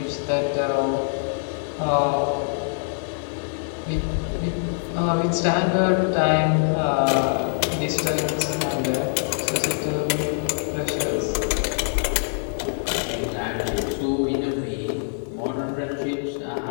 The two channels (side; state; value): right; silent; digital silence